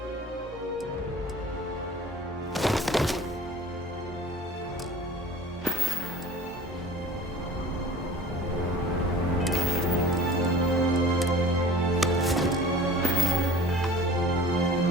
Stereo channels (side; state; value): both; normal; correlation 0.43